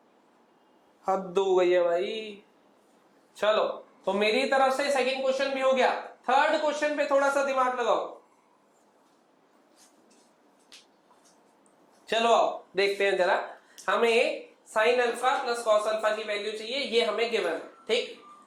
हद हो गई है भाई। चलो, तो मेरी तरफ से सेकंड क्वेश्चन भी हो गया। थर्ड क्वेश्चन पे थोड़ा सा दिमाग लगाओ। चलो आओ देखते हैं जरा। हमें sin alpha plus cos alpha की वैल्यू चाहिए, ये हमें गिवन है। ठीक,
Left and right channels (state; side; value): identical; both; correlation 1.00